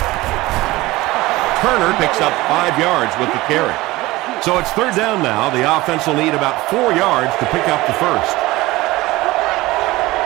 Turner picks up 5 yards with the carry. So it's third down now. The offense will need about 4 yards to pick up the first.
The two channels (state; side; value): quieter; left; 19.4 dB